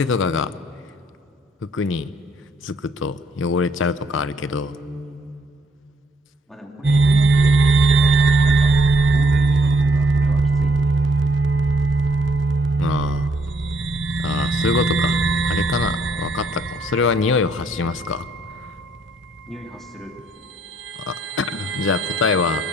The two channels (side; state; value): both; normal; correlation 0.69